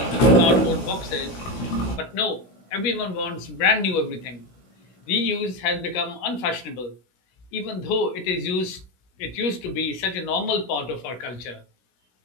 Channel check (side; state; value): right; late; 16 ms